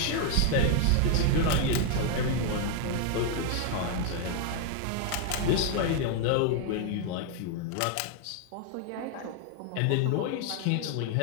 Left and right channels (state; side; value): different; both; correlation 0.00